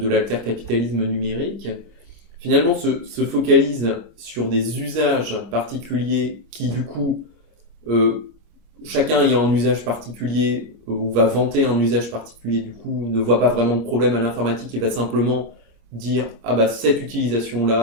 l'altercapitalisme numérique, finalement se focalise sur des usages particuliers qui du coup, chacun ayant un usage particulier ou va vanter un usage particulier, du coup ne voit pas vraiment de problème à l'informatique et va simplement dire cette utilisation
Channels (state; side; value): late; left; 26 ms